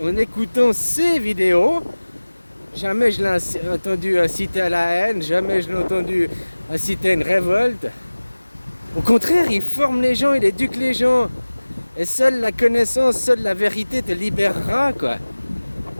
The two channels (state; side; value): inverted; both; correlation -1.00